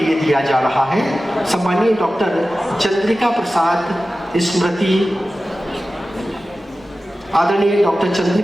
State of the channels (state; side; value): normal; both; correlation 0.95